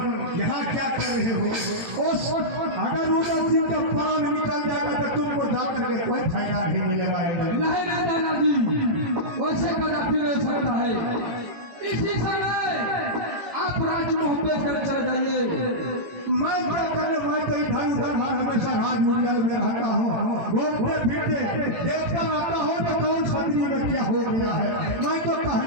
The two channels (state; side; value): late; left; 18 ms